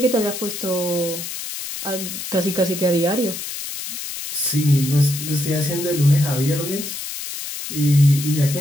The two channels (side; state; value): left; noise; hiss, 7 dB below the sound